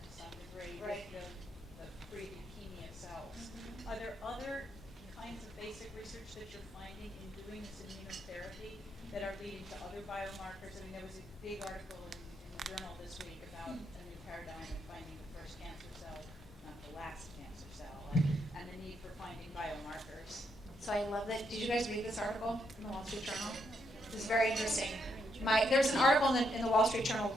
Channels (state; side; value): normal; both; correlation 0.77